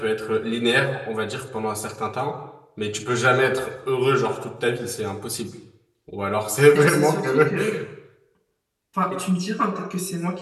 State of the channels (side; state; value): both; identical; correlation 1.00